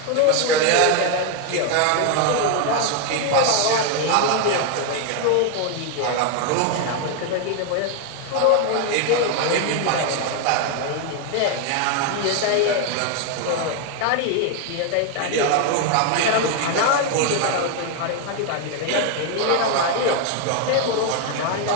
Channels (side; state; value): both; different; correlation 0.01